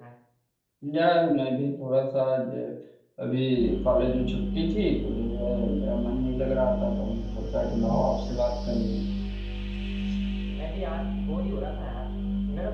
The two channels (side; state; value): both; identical; correlation 1.00